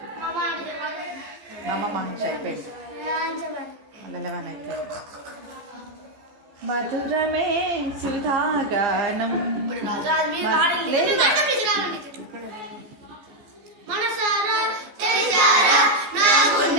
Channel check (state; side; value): late; left; 14 ms